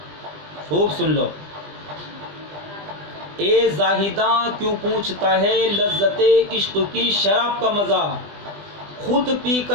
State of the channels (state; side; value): late; left; 20 ms